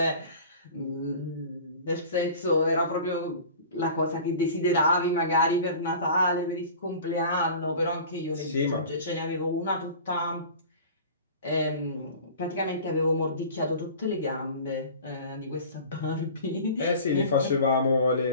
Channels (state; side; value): inverted; both; correlation -0.40